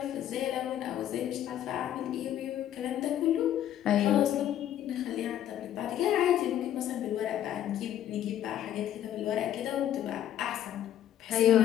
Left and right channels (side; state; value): right; quieter; 11.3 dB